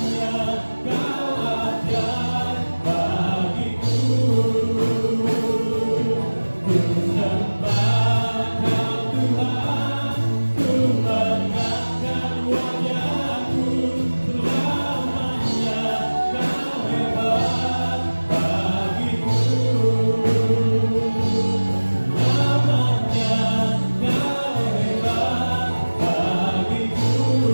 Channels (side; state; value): both; inverted; correlation -1.00